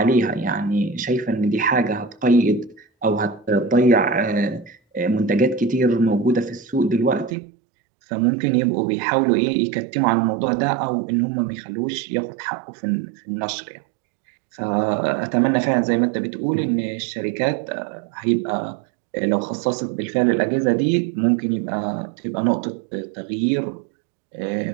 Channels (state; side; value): drops out; left; at 7.4 s